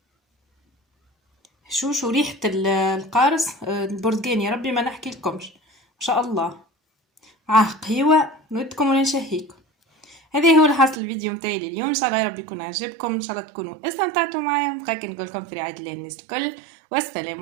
شو ريحة القارص البرتقال، يا ربي ما نحكي لكمش ما شاء الله. قهوة نودكم ولا نشهيكم. هذا هو الحاصل الفيديو متاعي اليوم، ان شاء الله يا رب يكون عجبكم، ان شاء الله تكونوا استمتعتوا معايا. بقى نقول لكم في رعاية الله الناس الكل، والسلام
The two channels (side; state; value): left; drops out; at 11.0 s